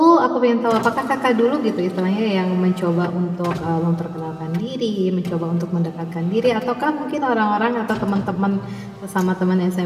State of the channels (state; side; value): identical; both; correlation 1.00